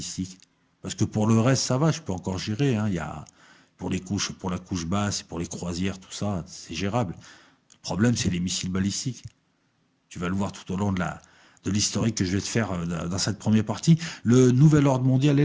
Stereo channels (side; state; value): both; identical; correlation 1.00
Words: Parce que pour le reste, ça va, je peux encore gérer. Hein. Il y a, pour la couche basse, pour les croisières, tout ça, c'est gérable. Le problème, c'est les missiles balistiques. Tu vas le voir tout au long de l'historique que je vais te faire dans cette première partie. Le nouvel ordre mondial est